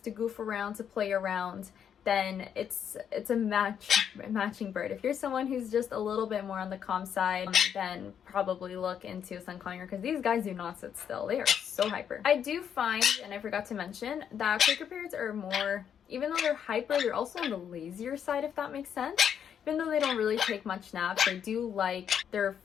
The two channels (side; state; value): right; quieter; 8.4 dB